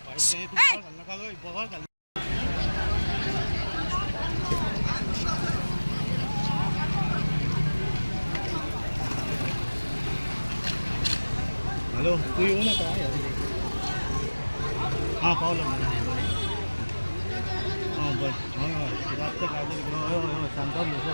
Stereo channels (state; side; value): inverted; both; correlation -1.00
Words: हॅलो तू येऊ नका हां पावलं हां बस जास्त काय